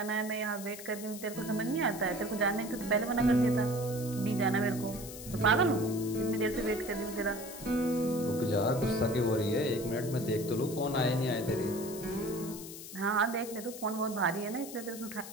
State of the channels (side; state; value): left; noise; hiss, 12 dB below the sound